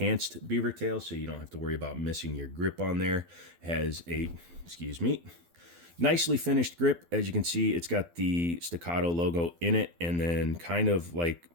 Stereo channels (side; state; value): left; late; 12 ms